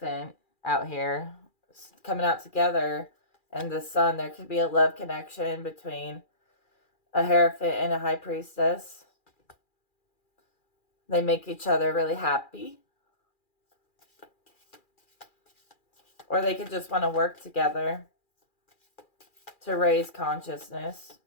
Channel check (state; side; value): late; right; 2.4 ms